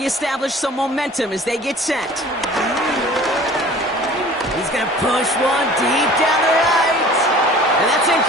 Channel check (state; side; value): normal; both; correlation 0.46